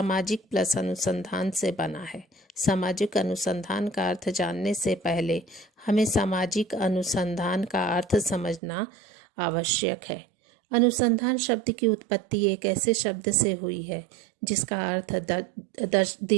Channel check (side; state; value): left; drops out; at 8.6 s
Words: प्लस अनुसंधान से बना है। सामाजिक अनुसंधान का अर्थ जानने से पहले हमें सामाजिक अनुसंधान का अर्थ समझना आवश्यक है। अनुसंधान शब्द की उत्पत्ति एक ऐसे शब्द से हुई है जिसका अर्थ